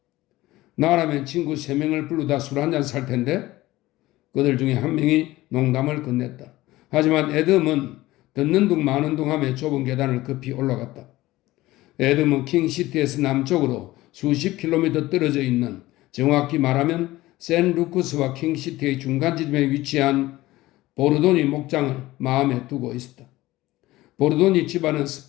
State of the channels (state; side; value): quieter; right; 17.7 dB